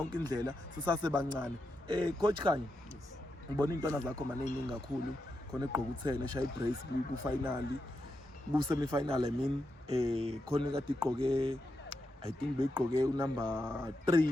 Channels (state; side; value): normal; both; correlation 0.86